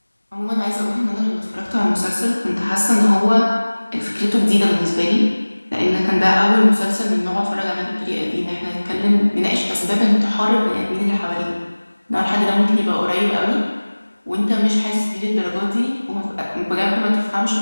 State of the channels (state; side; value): inverted; both; correlation -1.00